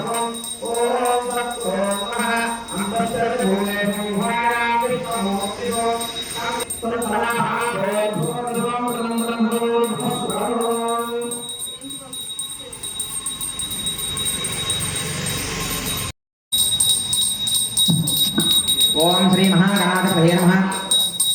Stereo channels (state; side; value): identical; both; correlation 1.00